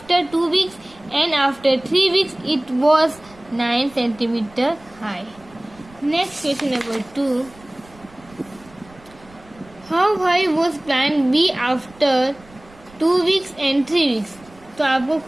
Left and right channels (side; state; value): right; noise; rumble, 25 dB below the sound